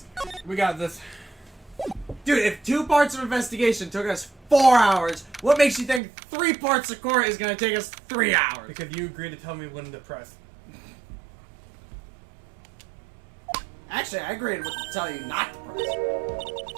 We got this. Dude, if 2 parts of investigation took us 4 hours, what makes you think 3 parts of court is gonna take us 3 hours? Because you agreed to tell me when to press. Actually, I agreed to tell you not to press.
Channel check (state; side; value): drops out; left; at 6.0 s